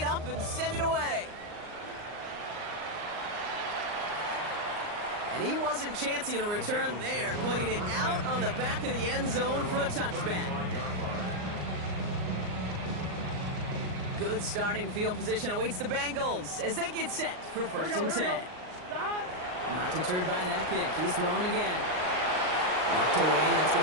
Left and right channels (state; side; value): late; left; 39 ms